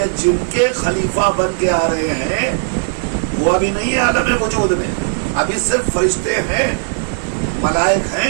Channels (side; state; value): left; silent; digital silence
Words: جن کے خلیفہ بن کے آ رہے ہیں وہ ابھی نہیں ہے عالم وجود میں. ابھی صرف فرشتے ہیں، ملائک